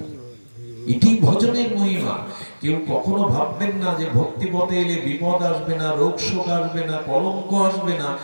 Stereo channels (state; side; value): inverted; both; correlation -1.00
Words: এটি ভজনের মহিমা। কেউ কখনো ভাববেন না যে ভক্তি পথে এলে বিপদ আসবে না, রোগ শোক আসবে না, কলঙ্ক আসবে না,